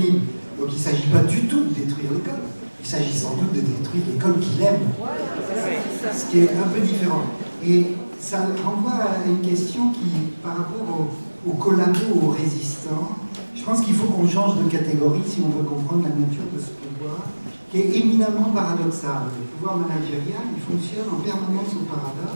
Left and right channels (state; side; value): inverted; both; correlation -1.00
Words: Donc il ne s'agit pas du tout de détruire l'école. Il s'agit sans doute de détruire l'école qu'il aime, ce qui est un peu différent. Et ça renvoie à une question qui, par rapport aux collabos, aux résistants, je pense qu'il faut qu'on change de catégorie si on veut comprendre la nature de ce pouvoir, qui est éminemment paradoxal. Le pouvoir managérial, il fonctionne en permanence au